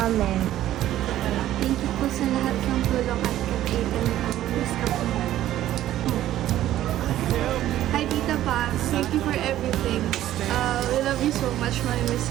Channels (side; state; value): left; quieter; 13.2 dB